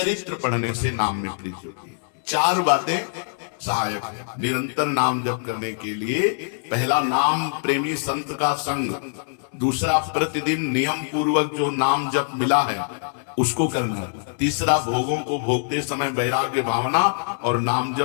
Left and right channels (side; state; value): right; silent; 63 dB below the other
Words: पढ़ने से नाम में प्रीति होती है। चार बातें सहायक है निरंतर नाम जप करने के लिए। पहला, नाम प्रेमी संत का संग। दूसरा, प्रतिदिन नियम पूर्वक जो नाम जप मिला है उसको करना। तीसरा, भोगों को भोगते समय वैराग्य भावना और नाम